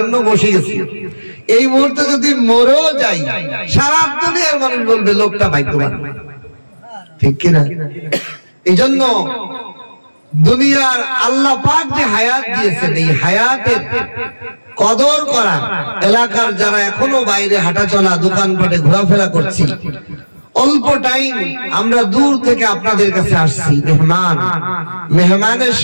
বসে গেছি, এই মুহূর্তে যদি মরেও যাই সারা দুনিয়ার মানুষ বলবে লোকটা ভাগ্যবান, ঠিক কিনা? এই জন্য দুনিয়ার আল্লাহ পাক যে হায়াত দিয়েছেন এই হায়াতের কদর করা, এলাকার যারা এখনো বাইরে হাঁটা চলা দোকানপাটে ঘোরাফেরা করছি, অল্প টাইম আমরা দূর থেকে আপনাদের কাছে আসছি মেহমানের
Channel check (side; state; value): both; inverted; correlation -1.00